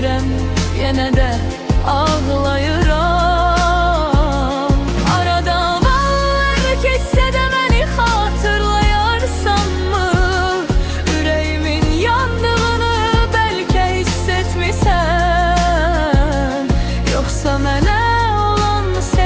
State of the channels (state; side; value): identical; both; correlation 1.00